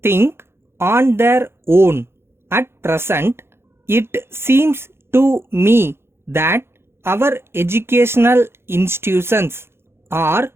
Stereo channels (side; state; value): left; late; 0.12 ms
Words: think on their own. At present, it seems to me that our educational institutions are